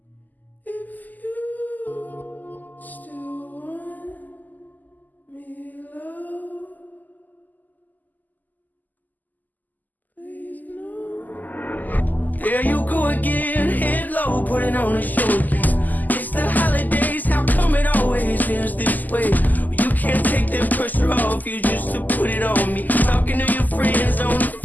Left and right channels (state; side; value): late; right; 0.083 ms